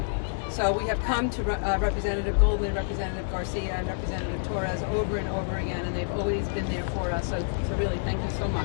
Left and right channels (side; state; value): right; silent; digital silence